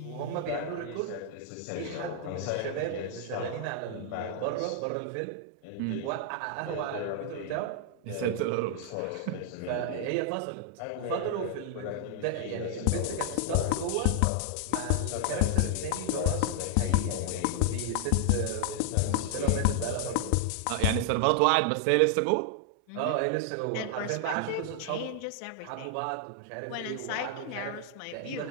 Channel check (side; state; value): both; different; correlation 0.00